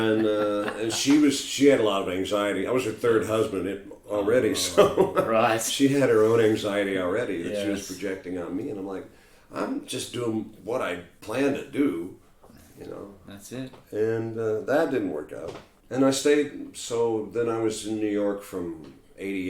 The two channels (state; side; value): identical; both; correlation 1.00